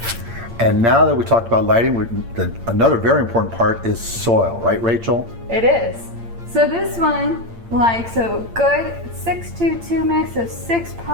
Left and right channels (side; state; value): left; late; 8.7 ms